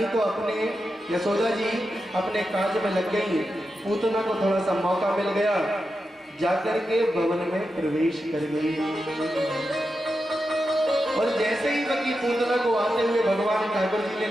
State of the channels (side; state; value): both; normal; correlation 0.89